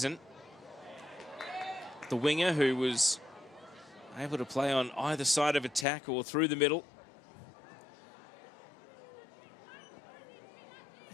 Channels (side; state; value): right; drops out; at 5.9 s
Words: The winger who was able to play on either side of attack or through the middle.